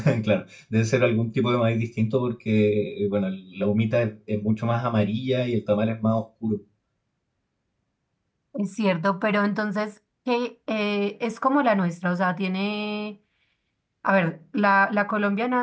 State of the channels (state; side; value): identical; both; correlation 1.00